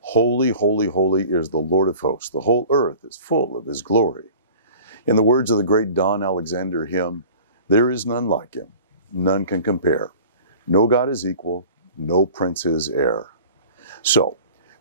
holy, holy is the Lord of hosts. The whole earth is full of his glory. In the words of the great Don Alexander hymn, there is none like him, none can compare. No God is equal, no prince is heir. So,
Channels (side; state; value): both; inverted; correlation -0.43